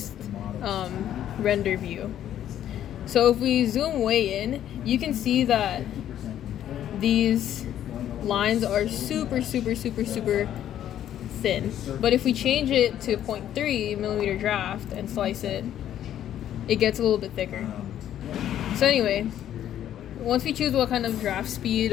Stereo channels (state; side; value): quieter; right; 11.1 dB